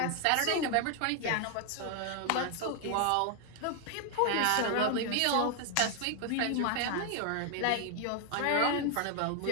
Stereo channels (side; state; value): both; different; correlation 0.01